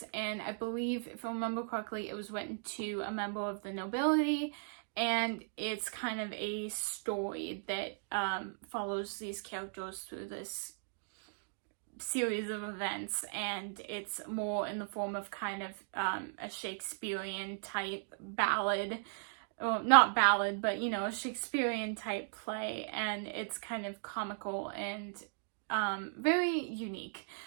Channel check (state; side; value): silent; left; digital silence